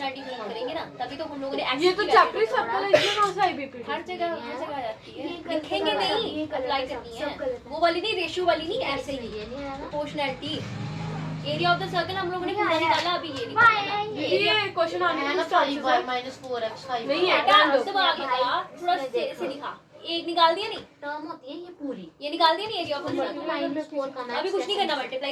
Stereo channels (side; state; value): both; identical; correlation 1.00